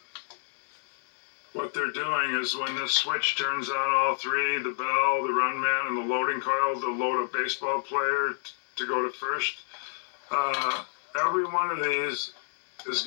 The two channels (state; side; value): silent; right; digital silence